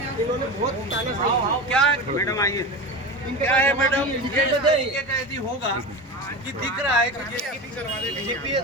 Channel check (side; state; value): both; normal; correlation 0.26